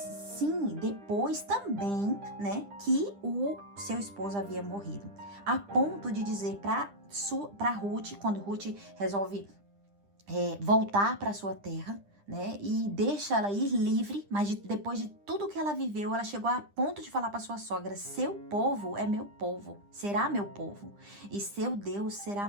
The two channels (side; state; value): left; late; 9.9 ms